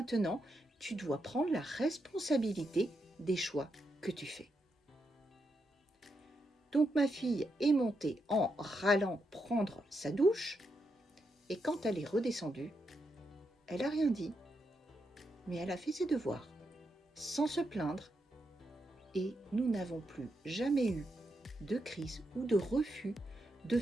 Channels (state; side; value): normal; both; correlation 0.83